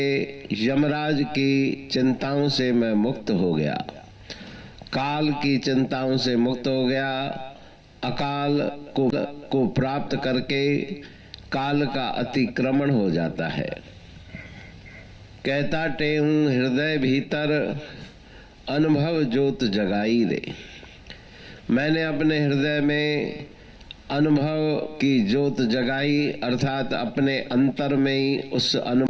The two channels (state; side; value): identical; both; correlation 1.00